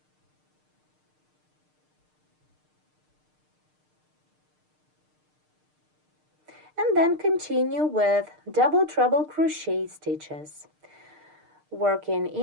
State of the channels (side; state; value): left; late; 6.6 ms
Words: And then continue with double treble crochet stitches, working